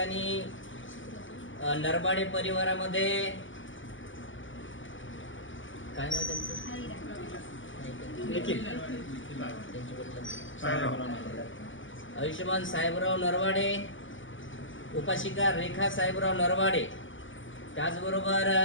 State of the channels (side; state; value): right; late; 0.56 ms